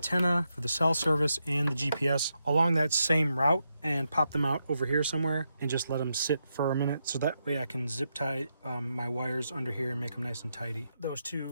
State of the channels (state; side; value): inverted; both; correlation -0.84